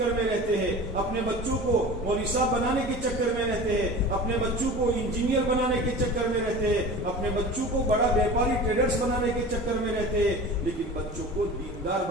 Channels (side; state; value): both; normal; correlation 0.36